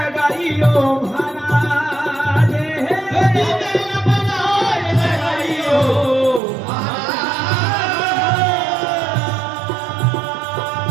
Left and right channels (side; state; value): left; drops out; at 6.4 s